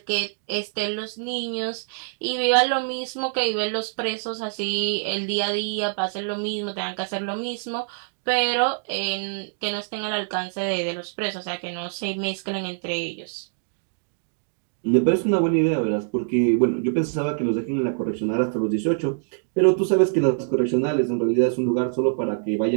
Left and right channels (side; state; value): left; silent; digital silence